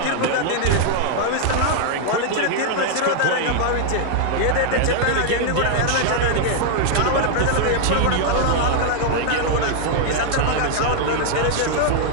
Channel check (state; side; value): different; both; correlation -0.01